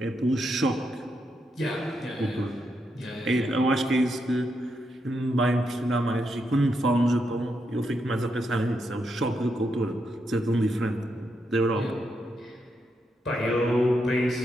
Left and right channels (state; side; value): normal; both; correlation 0.82